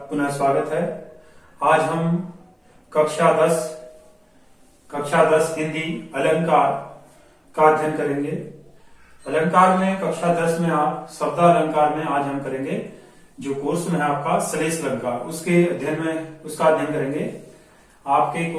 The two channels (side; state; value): both; identical; correlation 1.00